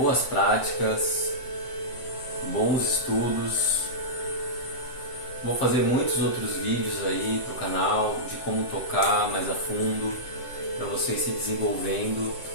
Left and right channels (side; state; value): right; late; 7.7 ms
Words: práticas, bons estudos. Vou fazer muitos outros vídeos aí pro canal de como tocar mais a fundo, para vocês se desenvolvendo.